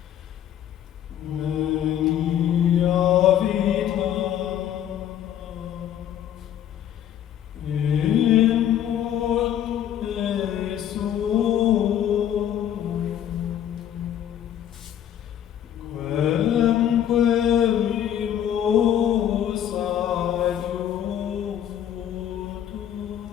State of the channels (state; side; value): quieter; right; 10.4 dB